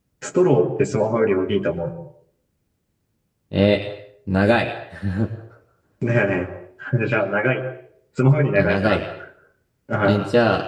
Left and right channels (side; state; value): both; identical; correlation 1.00